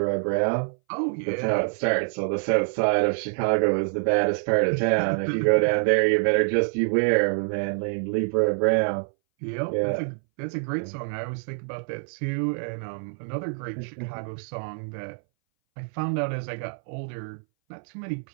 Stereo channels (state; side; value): silent; left; 60 dB below the other